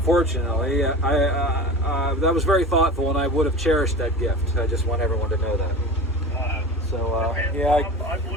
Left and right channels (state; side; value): normal; both; correlation 0.33